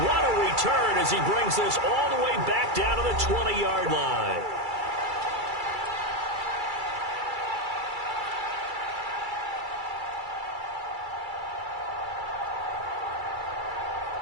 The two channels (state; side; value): late; left; 2.3 ms